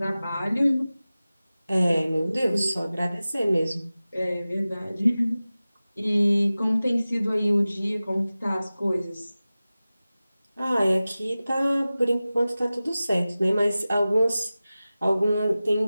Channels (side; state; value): both; inverted; correlation -0.97